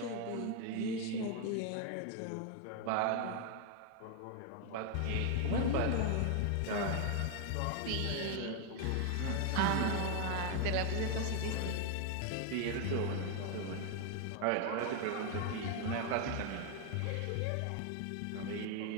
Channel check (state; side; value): different; both; correlation 0.00